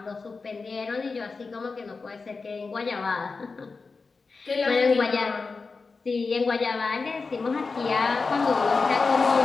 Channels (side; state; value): right; quieter; 4.3 dB